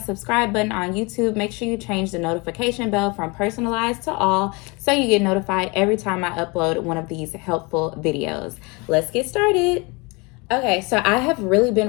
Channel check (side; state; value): right; quieter; 27.8 dB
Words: subscribe button on YouTube, make sure you change the notification bell from personalized to all so you get notified every time I upload one of these helpful videos. Let's get started. Okay, so I have really